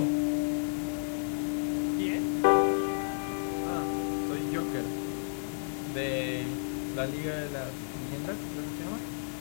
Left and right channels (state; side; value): silent; right; 57 dB below the other